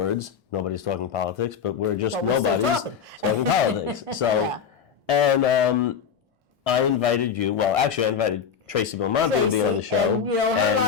Nobody's talking politics, but we're just But we're still nobody's talking. politics. So, Yeah. and I invited you. Well, actually, I invited Tracy Belmonte to be on the show. And you know, her and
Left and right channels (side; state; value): right; quieter; 7.1 dB